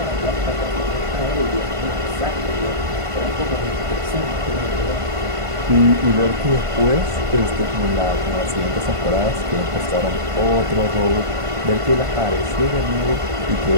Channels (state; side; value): late; left; 1.5 ms